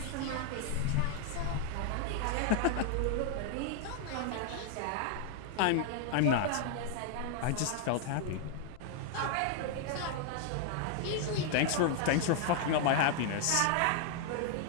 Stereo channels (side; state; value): both; different; correlation 0.00